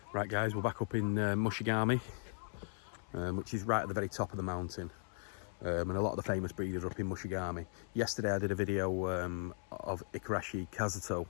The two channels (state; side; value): silent; right; 53 dB below the other